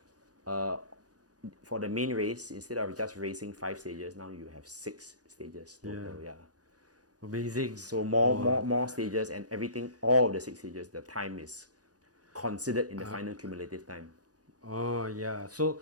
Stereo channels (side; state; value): left; late; 0.68 ms